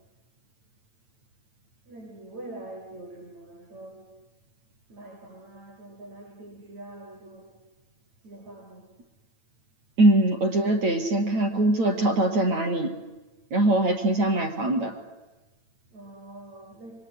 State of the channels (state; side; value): late; left; 8.9 ms